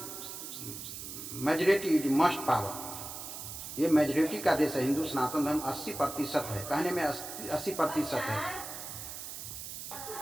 मेजॉरिटी इज मस्ट पावर, ये मेजॉरिटी का देश है। हिंदू सनातन धर्म 80% है, कहने में 80% है।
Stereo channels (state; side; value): noise; right; hiss, 9 dB below the sound